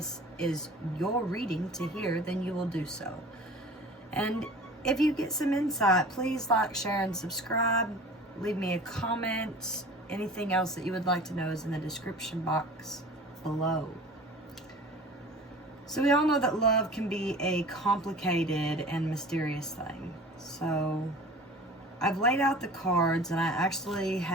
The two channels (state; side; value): normal; both; correlation 0.42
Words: is your reading to hear, then you will do so. And if you get some insight, please like, share, and subscribe. Leave me a comment. Anything else that you would like to know is in the description box below. So we all know that love can be a complicated and mysterious thing. So I've laid out the cards, and I actually